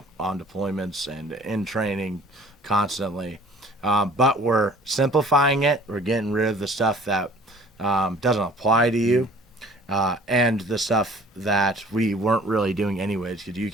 on deployments and in training constantly. But we're simplifying it. We're getting rid of the stuff that doesn't apply to you. And the stuff that we weren't really doing anyways, because you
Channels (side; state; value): both; normal; correlation 0.51